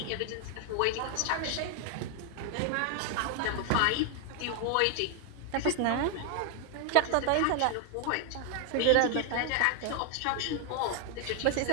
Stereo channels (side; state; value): both; different; correlation 0.00